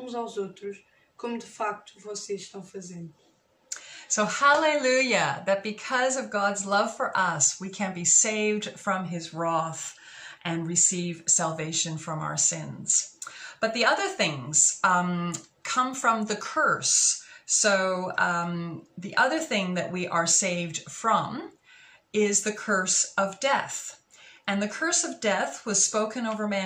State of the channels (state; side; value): identical; both; correlation 1.00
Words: aos outros, como de facto vocês estão fazendo. So hallelujah, that because of God's love for us, we can be saved from his wrath and receive salvation from our sins. But the other things come from the curse So the other thing that we are saved from is the curse of death. And the curse of death was spoken over